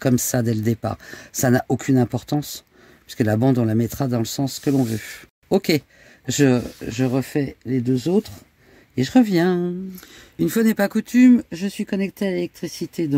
ça dès le départ. Ça n'a aucune importance, puisque la bande, on la mettra dans le sens que l'on veut. Ok, je refais les 2 autres et je reviens. Une fois n'est pas coutume, je suis connectée à l'électricité,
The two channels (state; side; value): identical; both; correlation 1.00